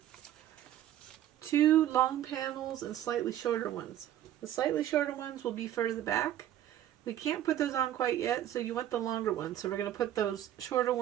2 long panels and slightly shorter ones. The slightly shorter ones will be further back. We can't put those on quite yet, so you want the longer ones. So we're going to put those shorter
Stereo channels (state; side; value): quieter; left; 12.0 dB